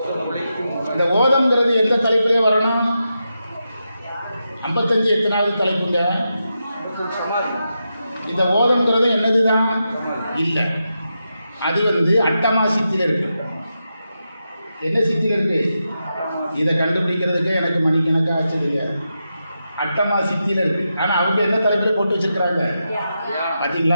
இந்த ஓதம்ங்கிறது எந்த தலைப்பிலே வரணும்? 55 எத்தனாவது தலைப்புங்க? இந்த ஓதம்ங்கிறது என்னது தான் இல்லை. அது வந்து அட்டமா சித்தியில் இருக்கு. என்ன சித்தியில் இருக்கு? இதை கண்டுபிடிக்கிறதுக்கு எனக்கு மணிக்கணக்காக ஆச்சுடுங்க. அட்டமா சித்தியில் இருக்கு. ஆனால் அவங்க என்ன தலைப்பில் போட்டு வச்சுருக்கிறாங்க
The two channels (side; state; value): both; inverted; correlation -0.87